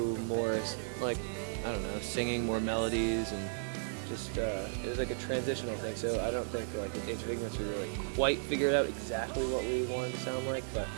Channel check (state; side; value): silent; left; 55 dB below the other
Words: more I don't know, singing, more melodies, and just it was like a transitional thing. So I don't think Age of Ignorance we really quite figured out exactly what we wanted to sound like, but